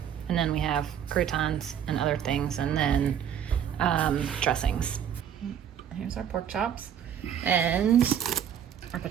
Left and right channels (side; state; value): left; quieter; 9.0 dB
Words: And then we have croutons and other things, and then dressings. Here's our pork chops and our